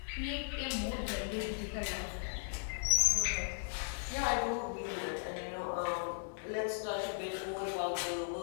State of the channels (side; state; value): right; silent; 53 dB below the other